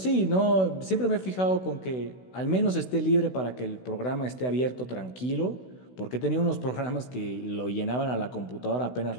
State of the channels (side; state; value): right; late; 16 ms